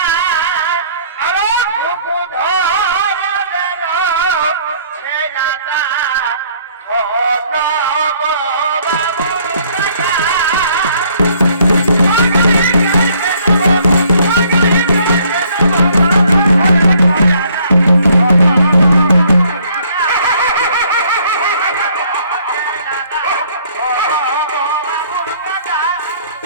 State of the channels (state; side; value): inverted; both; correlation -0.61